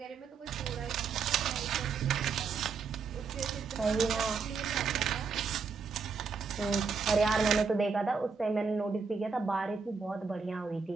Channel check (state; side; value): quieter; left; 5.2 dB